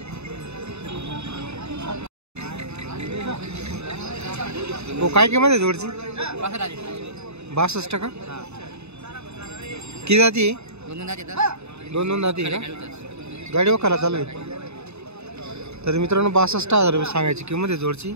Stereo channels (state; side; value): late; left; 0.80 ms